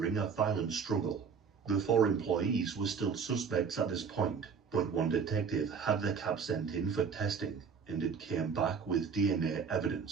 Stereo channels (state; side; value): quieter; left; 6.1 dB